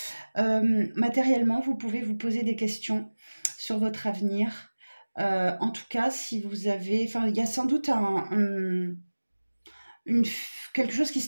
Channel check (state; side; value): inverted; both; correlation -1.00